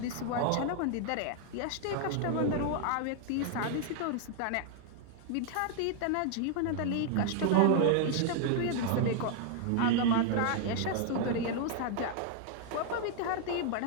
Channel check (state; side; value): different; both; correlation 0.00